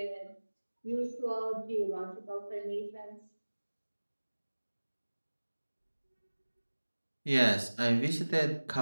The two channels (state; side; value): inverted; both; correlation -1.00